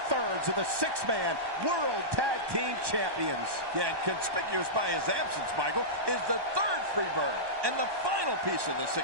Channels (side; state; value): left; late; 1.2 ms